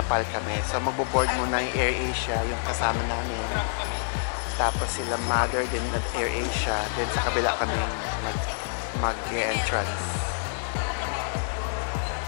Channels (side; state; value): right; silent; digital silence